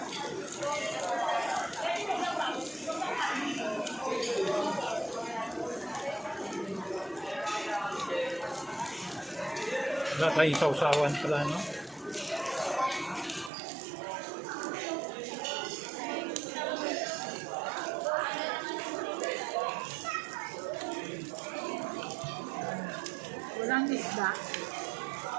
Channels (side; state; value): left; drops out; at 13.5 s